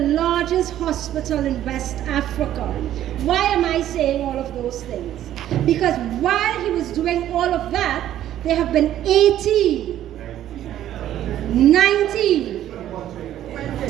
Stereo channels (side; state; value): left; quieter; 12.1 dB